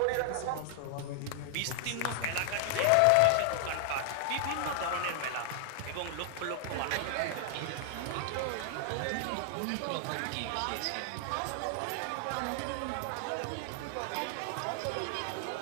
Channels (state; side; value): different; both; correlation -0.01